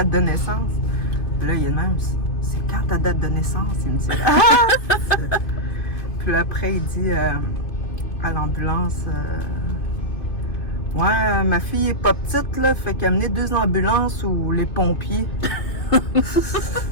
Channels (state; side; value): late; right; 2.5 ms